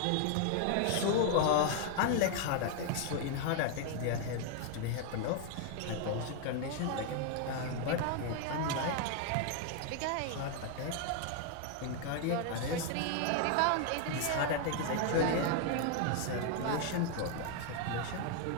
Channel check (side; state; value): both; different; correlation 0.00